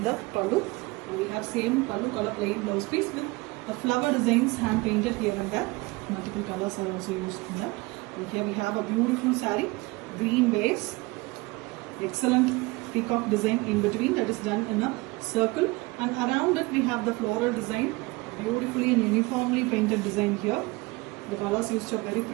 the pallu. And we have same pallu color plain blouse piece with a flower designs hand painted here and there. Multiple colors are also used in that. And here we have a beautiful saree, green base. Excellent peacock design in between that is done in a circle, and around it we have the floral design, beautifully and uniformly painted design here. The colors used are very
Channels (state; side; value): quieter; left; 23.6 dB